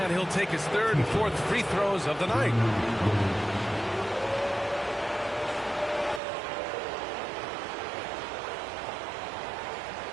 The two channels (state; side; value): drops out; left; at 6.2 s